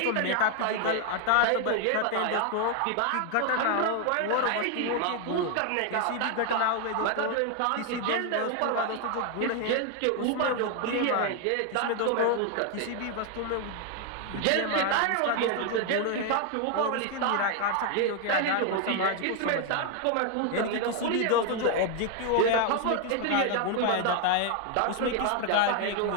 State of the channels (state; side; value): different; both; correlation 0.00